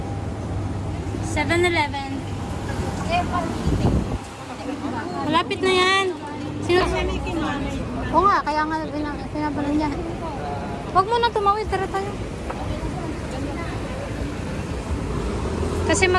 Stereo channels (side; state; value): both; identical; correlation 1.00